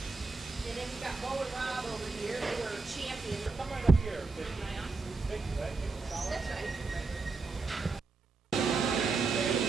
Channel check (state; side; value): quieter; left; 4.1 dB